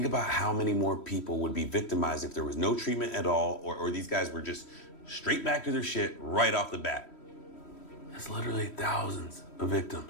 about how many more people would be victimized if there was no treatment at all, or these guys were just straight back to their shit right off the bat. That's literally thousands of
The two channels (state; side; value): late; right; 3.1 ms